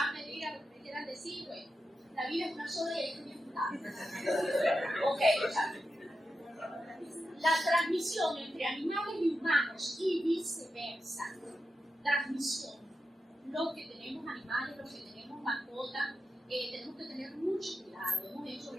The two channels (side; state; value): both; normal; correlation 0.89